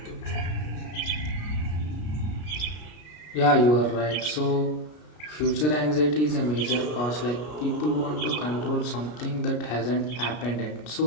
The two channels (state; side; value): late; right; 33 ms